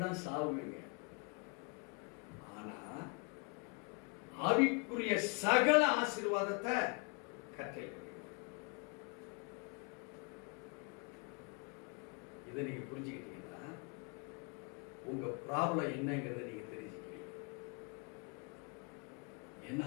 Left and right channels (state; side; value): quieter; right; 33.6 dB